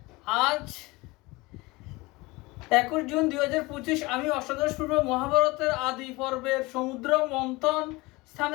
আজ 21 June 2025। আমি অষ্টাদশ পূর্ব মহাভারতের আদি পর্বের সমুদ্র মন্থন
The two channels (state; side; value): quieter; right; 22.6 dB